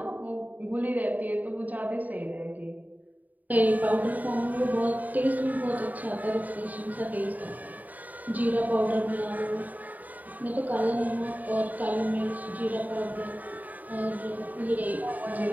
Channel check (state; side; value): late; left; 0.079 ms